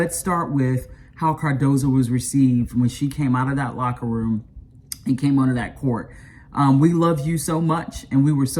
start with how Cardoza was received when she came out of that locker room and came onto that court. We love you so much, and we were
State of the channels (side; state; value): both; identical; correlation 1.00